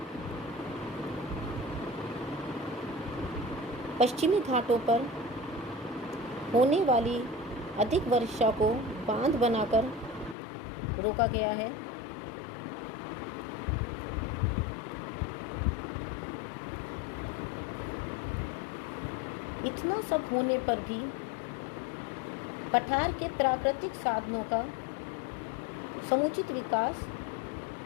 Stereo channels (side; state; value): right; drops out; at 10.4 s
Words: पश्चिमी घाटों पर होने वाली अधिक वर्षा को बांध बनाकर रोका गया है। इतना सब होने पर भी पठार के प्राकृतिक साधनों का समुचित विकास